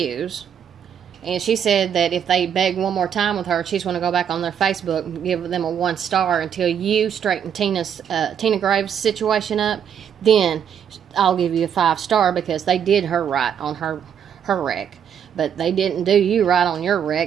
And she said that if they beg one more time with her, she's going to go back on their Facebook and give them a 1 star until you straighten Tina Graves' situation up. Then I'll give you a 5 star because they did her right on her wreck. But they didn't do you right on your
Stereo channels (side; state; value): left; quieter; 8.4 dB